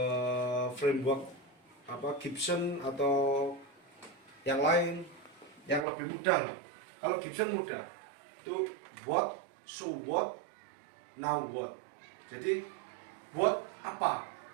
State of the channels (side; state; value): left; drops out; at 5.9 s